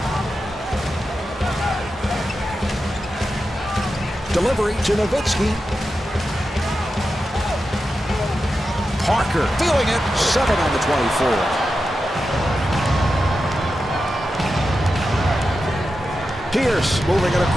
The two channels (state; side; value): normal; both; correlation 0.90